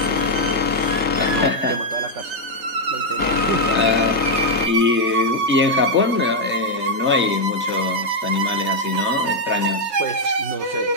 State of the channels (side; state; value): left; late; 3.3 ms